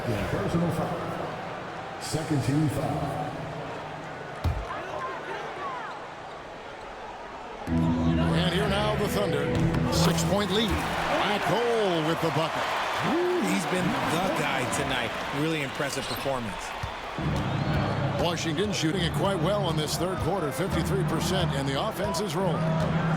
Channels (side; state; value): both; identical; correlation 1.00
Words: personal foul. Second team foul. And here now the Thunder. 6-point lead. Black Hole with the bucket. Ooh, he's been the guy tonight. Really impressive performance. Washington shooting it quite well in this third quarter, 53%, and the offense is rolling.